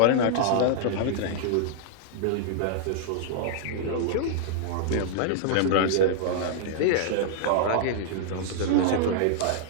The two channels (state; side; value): different; both; correlation -0.01